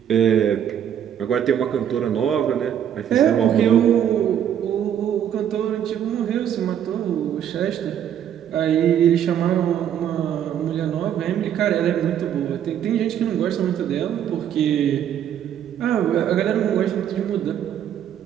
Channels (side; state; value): left; quieter; 9.7 dB